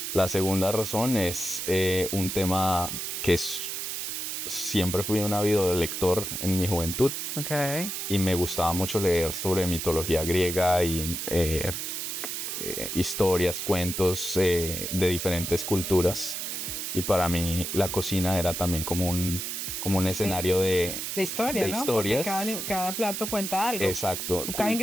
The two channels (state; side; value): noise; right; hiss, 4 dB below the sound